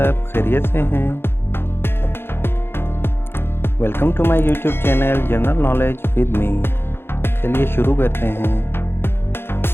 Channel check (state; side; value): late; right; 0.11 ms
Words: खैरियत से हैं? Welcome to my YouTube channel general knowledge with me. चलिए शुरू करते हैं।